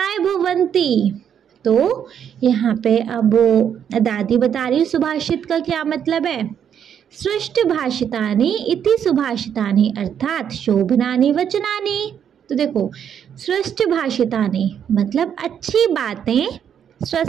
भवन्ति। तो यहाँ पे अब दादी बता रही सुभाषित का क्या मतलब है। सृष्ट भाषितानि इति सुभाषितानि, अर्थात शोभनानि वचनानि। तो देखो सृष्ट भाषितानि मतलब अच्छी बातें,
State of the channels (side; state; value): left; quieter; 8.6 dB